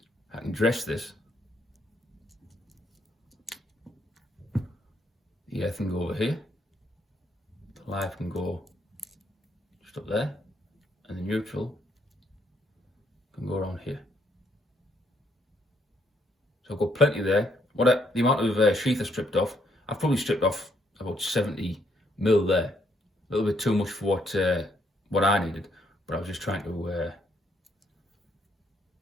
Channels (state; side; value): normal; both; correlation 0.72